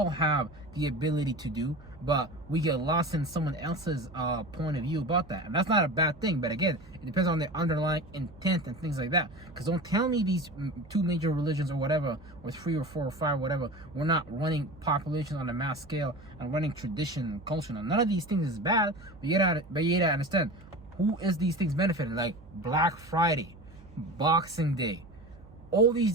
have the ability to do, but we get lost in someone else's point of view about that. And that's not a bad thing, but again, it depends on the underlying intent and things like that. Because don't tell me these two major religions or whatever, or three or four or five, whatever, we're not running populations on a mass scale and running tradition and culture. Now, none of these things is bad, but you gotta understand who is these things benefiting. Like Black Friday, Boxing Day, all these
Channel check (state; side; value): noise; right; hum, 22 dB below the sound